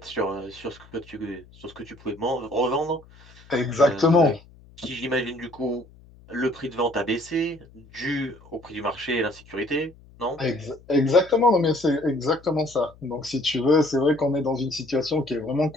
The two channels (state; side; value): noise; left; hum, 24 dB below the sound